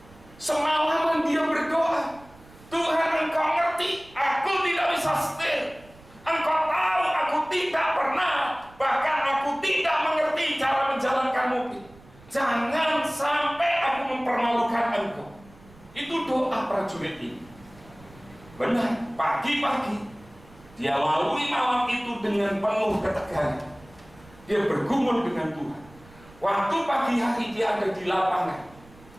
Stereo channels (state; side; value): noise; right; rumble, 24 dB below the sound